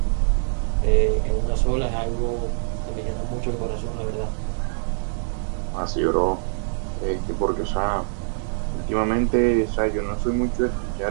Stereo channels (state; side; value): silent; left; 63 dB below the other